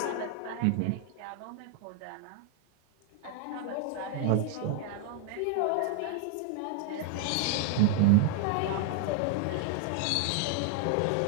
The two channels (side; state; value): both; different; correlation 0.00